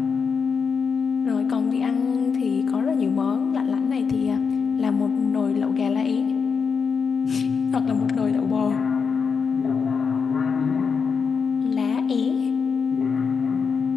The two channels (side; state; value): right; quieter; 5.8 dB